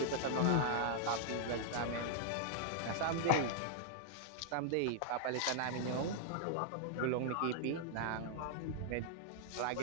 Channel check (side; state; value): both; different; correlation -0.01